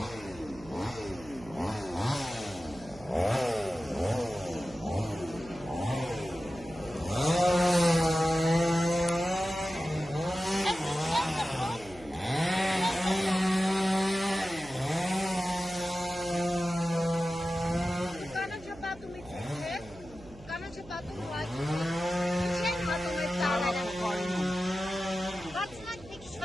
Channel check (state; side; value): noise; right; hum, 20 dB below the sound